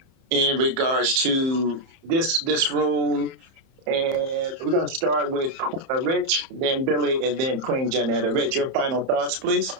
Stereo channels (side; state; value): left; late; 30 ms